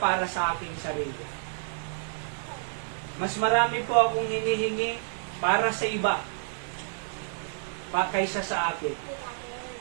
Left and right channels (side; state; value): left; silent; 56 dB below the other